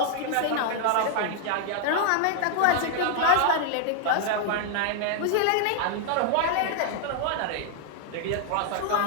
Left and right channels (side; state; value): both; different; correlation 0.00